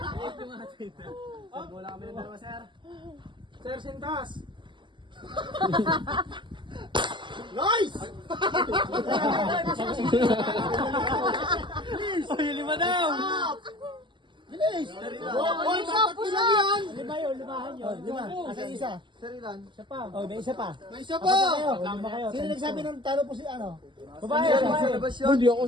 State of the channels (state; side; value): late; left; 0.23 ms